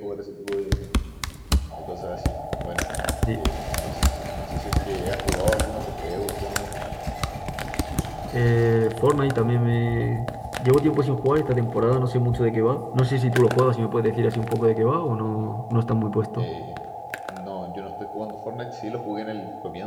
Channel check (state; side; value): identical; both; correlation 1.00